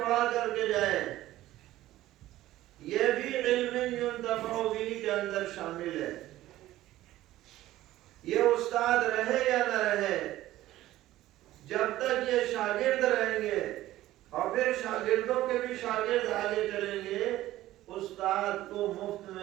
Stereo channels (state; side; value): quieter; left; 15.2 dB